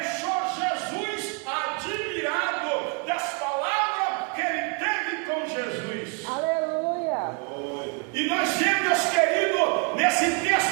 Jesus admirado das palavras que ele teve com Jesus. Aleluia. E nós vemos, meus queridos, nesse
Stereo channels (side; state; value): left; quieter; 33.9 dB